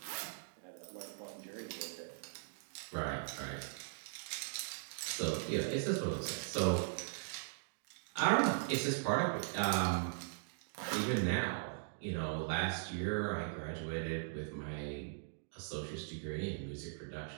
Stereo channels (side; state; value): left; silent; digital silence